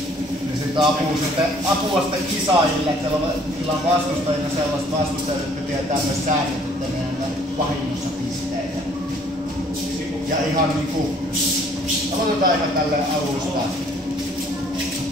sitten apua sitten kisaajille, että niillä on vastustajina sellaiset vastustajat, jotka tietää myös säännöt, että ne on vahingossa pisteitä. Ja ihan niinku, aloitetaan ihan tälleen alusta.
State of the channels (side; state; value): both; normal; correlation 0.59